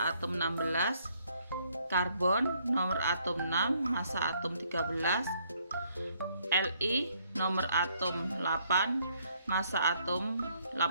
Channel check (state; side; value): inverted; both; correlation -0.68